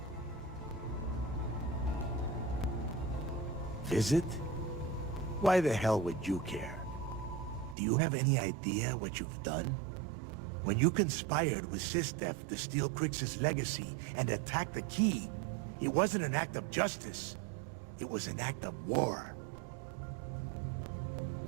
Visit? Why the hell would you care? Do you have any idea what you've done? When you conspired with Sistef to steal Crix's legacy and attack the key, it wasn't an act of justice. It was an act of war.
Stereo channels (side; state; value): left; drops out; at 7.8 s